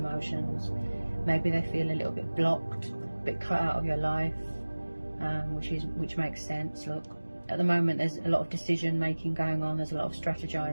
Maybe they feel a little bit blocked, a bit cut out of your life, which makes sense. Look, at the moment there's a lot of decision making going on, there's a lot of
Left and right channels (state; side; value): inverted; both; correlation -1.00